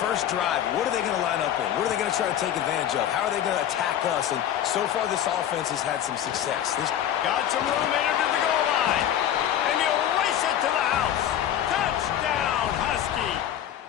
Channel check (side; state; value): right; quieter; 10.7 dB